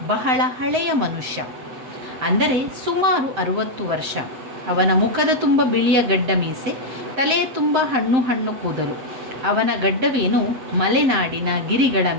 ಬಹಳ ಹಳೆಯ ಮನುಷ್ಯ, ಅಂದರೆ ಸುಮಾರು 60 ವರ್ಷ. ಅವನ ಮುಖದ ತುಂಬ ಬಿಳಿಯ ಗಡ್ಡ ಮೀಸೆ, ತಲೆಯ ತುಂಬ ಹಣ್ಣು ಕೂದಲು. ಅವನ ಗಡ್ಡವೇನು ಮಲೆನಾಡಿನ ಗಿರಿಗಳ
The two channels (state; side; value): late; left; 7.7 ms